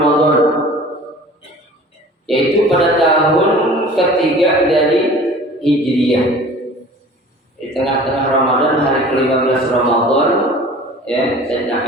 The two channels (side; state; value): both; normal; correlation 0.44